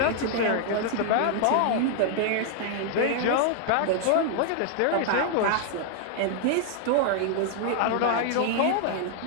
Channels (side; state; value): both; different; correlation 0.00